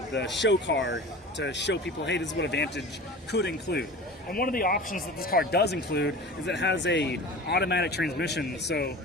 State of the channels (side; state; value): both; normal; correlation 0.36